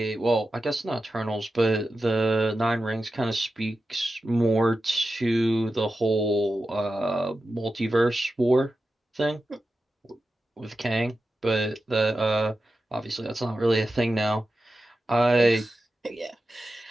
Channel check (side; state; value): both; normal; correlation 0.92